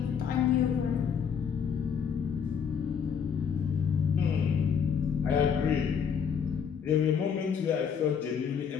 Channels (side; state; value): right; quieter; 7.1 dB